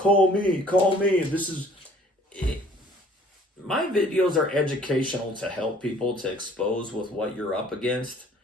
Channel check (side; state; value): both; normal; correlation 0.55